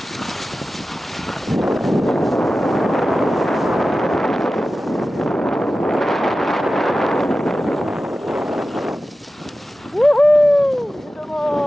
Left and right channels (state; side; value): normal; both; correlation 0.94